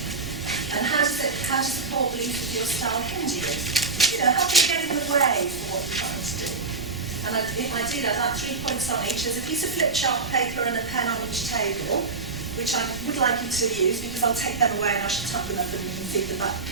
And how does the core belief of your style hinder you? How can you get in the way for what you're trying to do? And I did have 3 points on each. There's a piece of flip chart paper and a pen on each table, which I would like you to use because I'll take them away and I shall tap them up and you can feed them back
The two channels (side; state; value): left; quieter; 4.2 dB